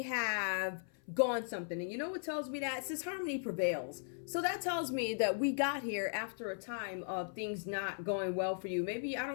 have gone something. And you know what tells me that? It says harmony prevails. So that tells me that we got here after a time of things not going well for you. Maybe, I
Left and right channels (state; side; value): silent; right; 53 dB below the other